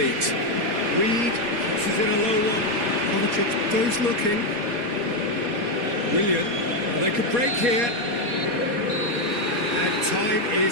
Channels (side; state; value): left; late; 4.2 ms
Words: Reed crosses in a low one. Kovacic goes looking. Willian, well, they could break here. And time